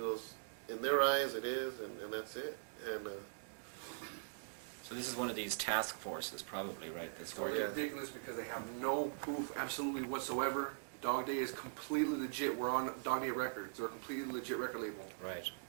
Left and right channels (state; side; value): silent; left; digital silence